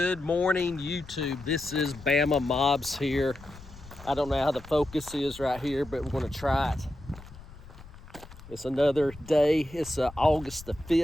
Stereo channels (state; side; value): noise; left; rumble, 18 dB below the sound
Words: morning, YouTube. This is Bama Mobs here. I don't know how the focus is right here, but we're going to try it. It's another day. It's August the